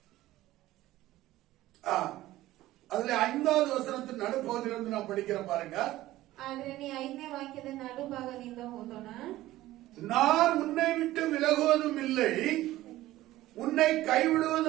அதுல 5வது வசனத்தின் நடுப்பகுதியிலிருந்து நான் படிக்கிறேன் பாருங்க. ಆದ್ರೆ ನೀ 5ನೇ ವಾಕ್ಯದ ನಡುಭಾಗದಿಂದ ಓದೋಣ. நான் உன்னை விட்டு விலகுவதும் இல்லை, உன்னை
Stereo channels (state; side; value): quieter; left; 15.9 dB